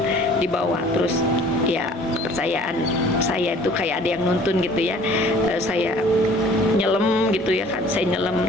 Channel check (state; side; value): normal; both; correlation 0.52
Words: di bawah. Terus ya kepercayaan saya itu kayak ada yang nuntun gitu ya. Saya nyelam gitu ya kan, saya